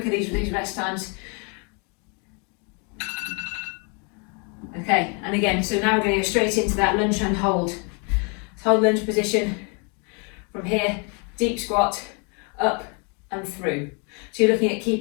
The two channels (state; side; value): quieter; right; 35.1 dB